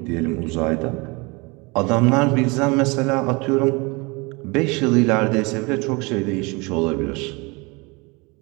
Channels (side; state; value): left; quieter; 27.1 dB